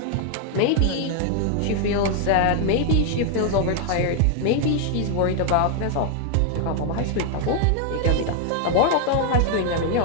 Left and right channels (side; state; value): both; different; correlation 0.00